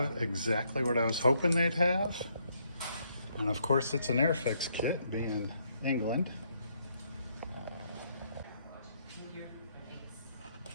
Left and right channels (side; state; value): both; inverted; correlation -0.73